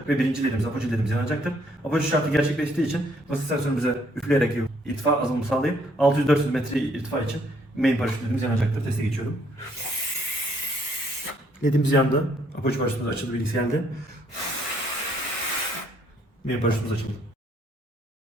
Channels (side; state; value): both; normal; correlation 0.67